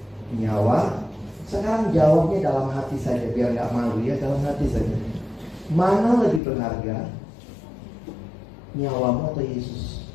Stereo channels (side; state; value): right; drops out; at 6.4 s